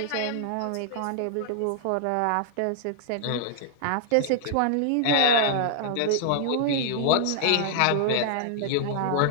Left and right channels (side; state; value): both; different; correlation -0.01